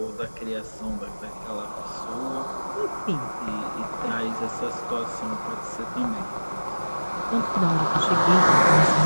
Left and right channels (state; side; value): inverted; both; correlation -1.00